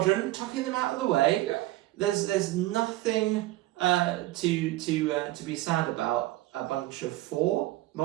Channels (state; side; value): quieter; left; 17.1 dB